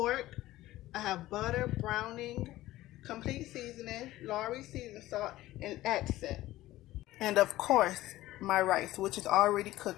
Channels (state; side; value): quieter; right; 16.2 dB